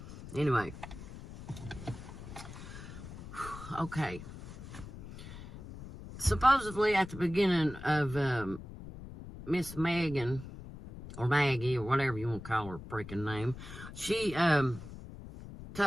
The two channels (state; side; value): noise; left; rumble, 13 dB below the sound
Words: Anyway. Okay. Supposedly at the beginning of Miss Megan, or Maggie, or whatever you want to call her freaking name, she